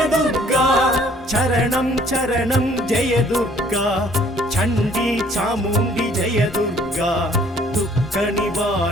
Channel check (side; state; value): both; normal; correlation 0.59